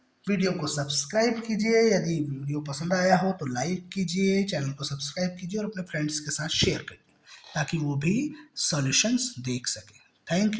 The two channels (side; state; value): both; identical; correlation 1.00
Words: Video को सब्सक्राइब कीजिए, यदि वीडियो पसंद आया हो तो लाइक कीजिए, चैनल को सब्सक्राइब कीजिए और अपने फ्रेंड्स के साथ शेयर करिए ताकि वो भी सॉल्यूशंस देख सकें। थैंक